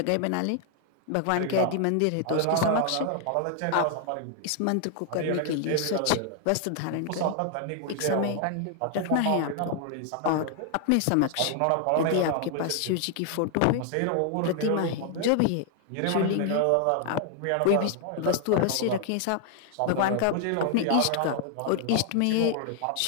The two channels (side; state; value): both; different; correlation 0.00